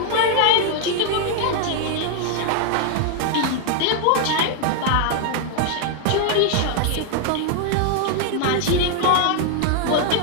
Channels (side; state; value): both; different; correlation 0.00